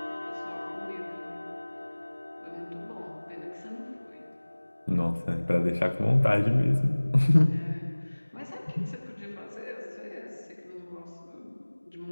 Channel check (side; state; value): both; inverted; correlation -1.00